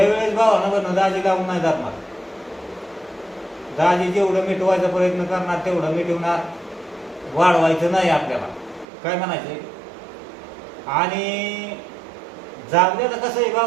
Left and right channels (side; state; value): left; drops out; at 8.8 s